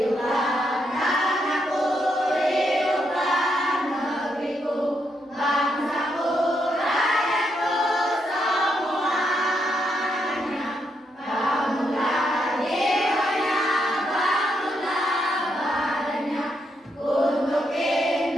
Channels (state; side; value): normal; both; correlation 0.79